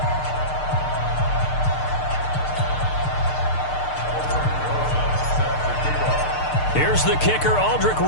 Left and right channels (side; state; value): right; late; 6.6 ms